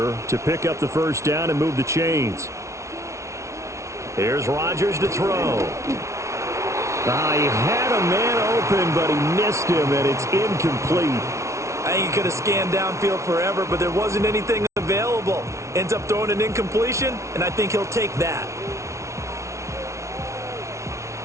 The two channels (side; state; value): left; late; 0.14 ms